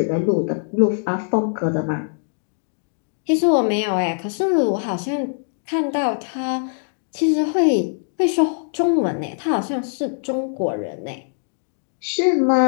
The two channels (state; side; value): silent; right; digital silence